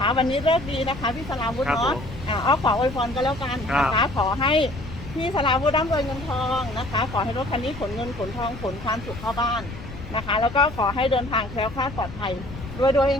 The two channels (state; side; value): noise; left; rumble, 12 dB below the sound